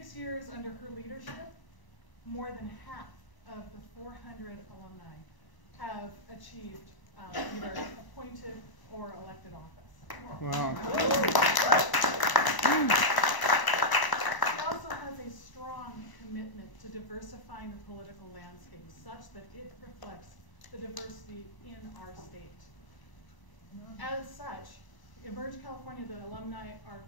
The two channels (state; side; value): late; right; 1.0 ms